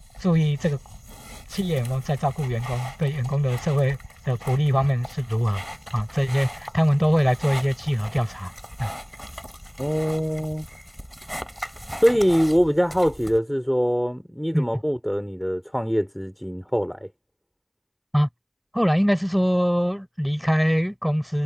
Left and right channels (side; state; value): both; identical; correlation 1.00